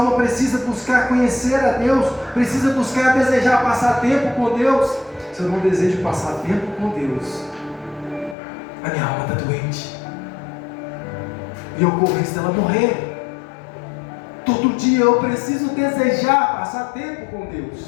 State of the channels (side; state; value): right; drops out; at 8.3 s